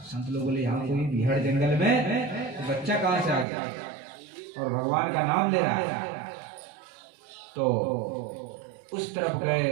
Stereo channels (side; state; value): left; drops out; at 3.5 s